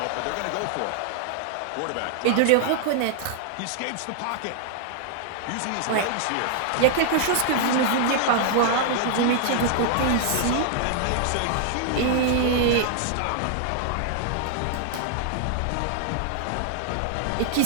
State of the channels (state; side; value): different; both; correlation -0.01